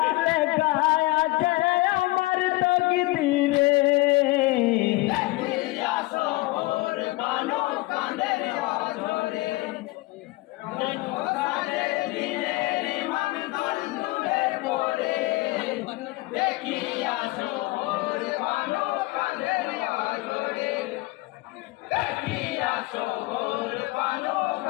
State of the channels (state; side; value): quieter; right; 20.8 dB